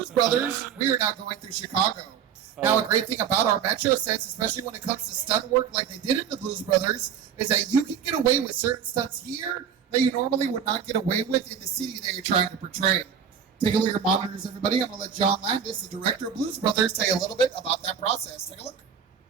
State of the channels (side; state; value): left; quieter; 7.9 dB